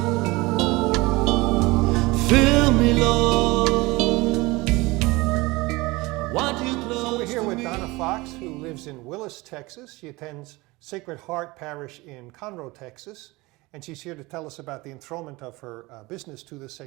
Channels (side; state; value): left; quieter; 22.3 dB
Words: Fill me, Lord. I want you close. So we're here with Donna Fox, who lives in Willis, Texas. She attends Sacred Heart Parish in Conroe, Texas. And she's here to tell us about the enthronement of her business to the